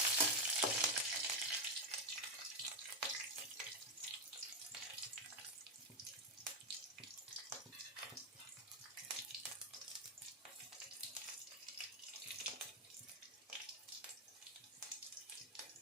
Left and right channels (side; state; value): both; normal; correlation 0.05